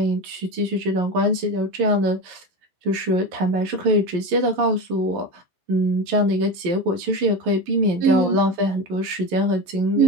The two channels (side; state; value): left; late; 11 ms